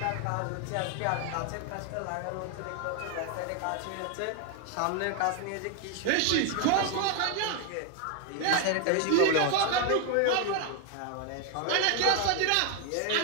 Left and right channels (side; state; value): both; different; correlation 0.01